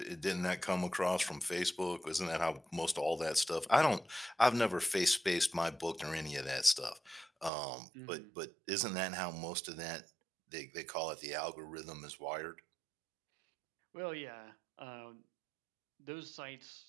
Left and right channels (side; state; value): left; drops out; at 7.5 s